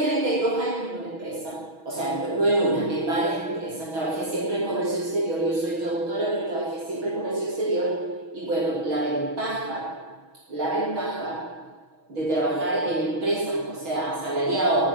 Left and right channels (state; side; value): late; left; 6.2 ms